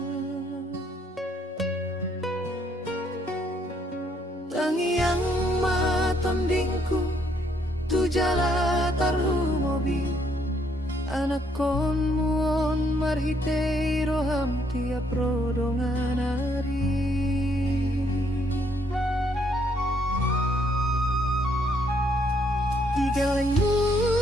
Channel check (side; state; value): both; normal; correlation 0.70